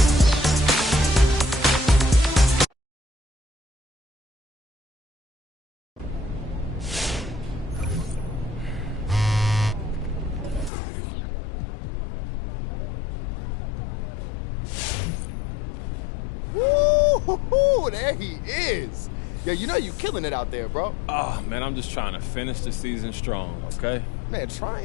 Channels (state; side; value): drops out; right; at 10.7 s